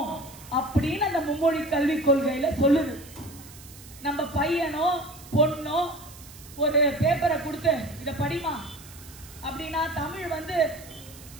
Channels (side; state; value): right; noise; hiss, 19 dB below the sound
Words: அப்படின்னு அந்த மும்மொழி கல்வி கொள்கையில சொல்லுது. நம்ம பையனோ பொண்ணோ ஒரு பேப்பரை கொடுத்து இத படிமா அப்படின்னா தமிழ்